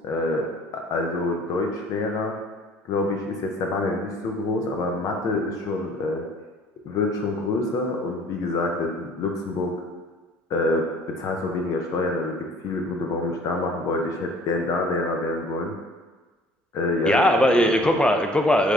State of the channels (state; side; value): normal; both; correlation 0.53